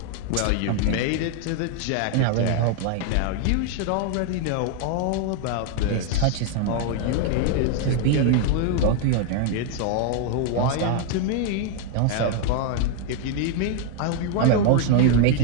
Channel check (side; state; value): both; different; correlation 0.00